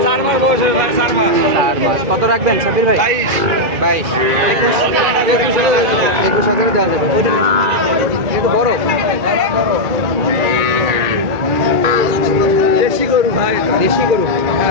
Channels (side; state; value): left; late; 2.0 ms